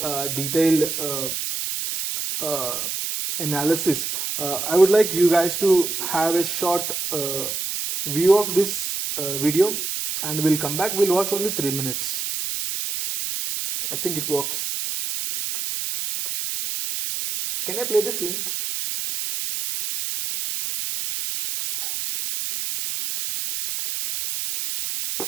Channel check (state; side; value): noise; right; hiss, 3 dB below the sound